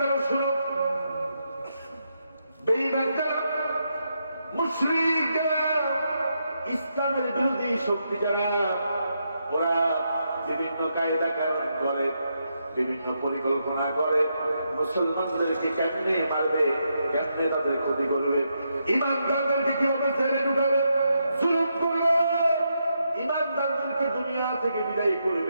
শুনো, বেঈমান যারা, মুশরিক যারা, ইসলামের বিরোধী শক্তি যারা, ওরা বিভিন্ন কায়দা কানুন করে, বিভিন্ন পরিকল্পনা করে, মুসলমানদেরকে কেমনে মারবে, কেমনে তাদের ক্ষতি করবে, ইমানদারদেরকে কিভাবে ছেড়ে ঢুকাবে, জুলুম করবে, ইমানদারদেরকে দুনিয়া থেকে বিদায়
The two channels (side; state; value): both; inverted; correlation -0.81